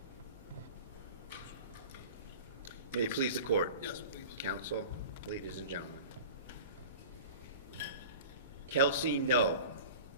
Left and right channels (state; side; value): inverted; both; correlation -0.37